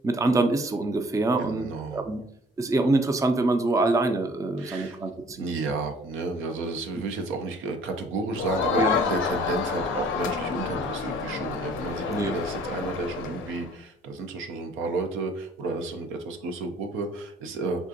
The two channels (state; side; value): normal; both; correlation 0.55